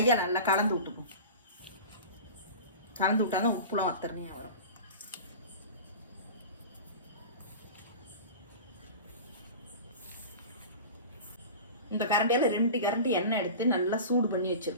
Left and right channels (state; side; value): inverted; both; correlation -0.34